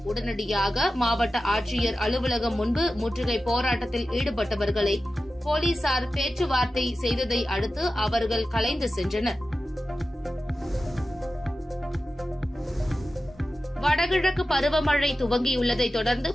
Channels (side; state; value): both; normal; correlation 0.94